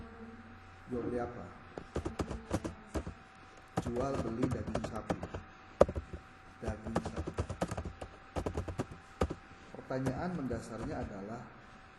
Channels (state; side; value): identical; both; correlation 1.00